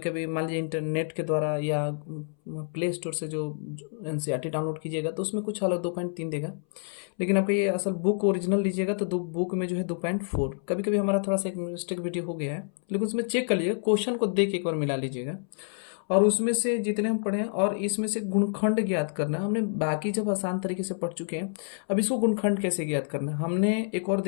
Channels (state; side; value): silent; right; 59 dB below the other